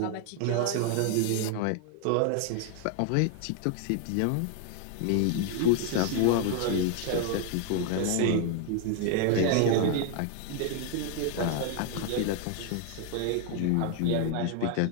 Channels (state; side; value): different; both; correlation 0.00